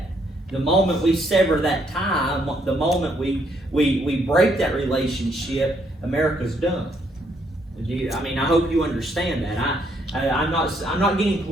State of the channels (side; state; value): both; normal; correlation 0.71